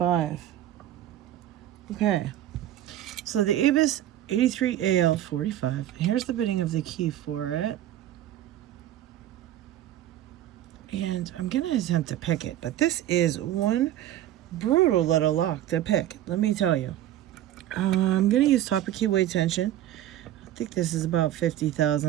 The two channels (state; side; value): quieter; left; 12.5 dB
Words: Okay, so the ABUS 83AL 45. Here's the bitting of the key for it, and I'm gonna attempt to pick it, but this is one brutal little lock to pick. Let me tell you. I'm going to use topic keyway tension. I think this is about 50